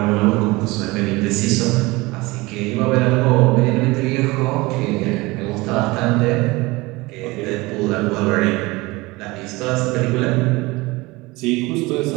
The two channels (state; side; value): quieter; left; 22.4 dB